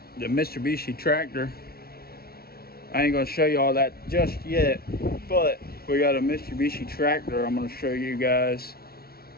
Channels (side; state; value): right; late; 0.44 ms